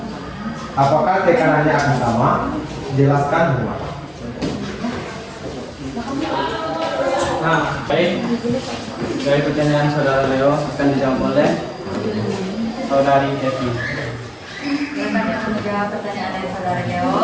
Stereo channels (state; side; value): identical; both; correlation 1.00